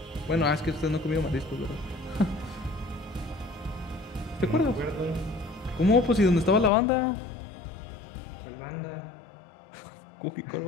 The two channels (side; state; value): right; drops out; at 6.7 s